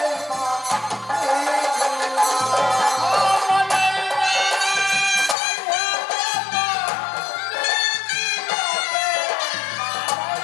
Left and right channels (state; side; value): drops out; right; at 5.4 s